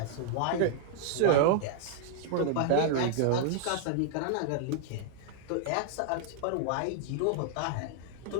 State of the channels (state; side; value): different; both; correlation -0.01